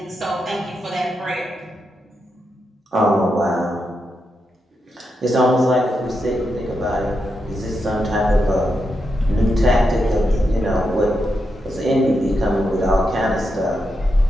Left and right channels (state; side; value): normal; both; correlation 0.85